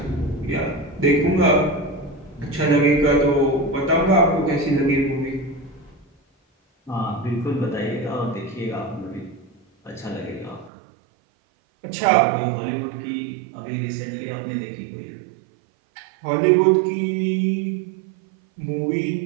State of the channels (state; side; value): drops out; left; at 10.7 s